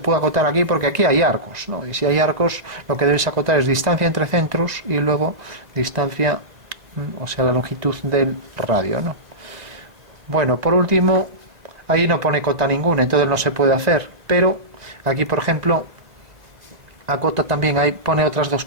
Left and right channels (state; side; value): late; left; 2.0 ms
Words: puede acotar aquí porque aquí hay arcos, ¿no? Y si hay arcos, lo que debes acotar es distancia entre centros y luego distancia, o sea, la longitud del radio, ¿no? Bueno, por último, ahí no pone cota ninguna, entonces no se puede hacer, pero aquí, por ejemplo, acota también, ahí pone otras dos